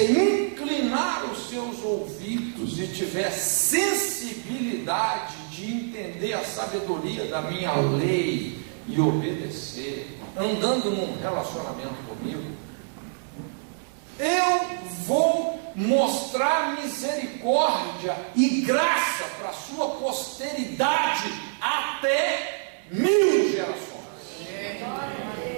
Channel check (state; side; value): silent; left; digital silence